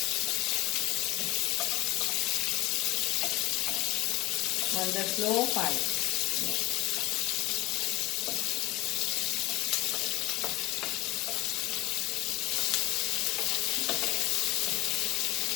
On the slow fire.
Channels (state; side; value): quieter; right; 20.2 dB